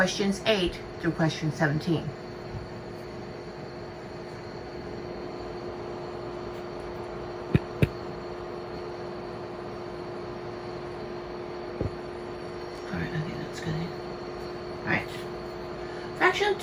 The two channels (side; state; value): both; identical; correlation 1.00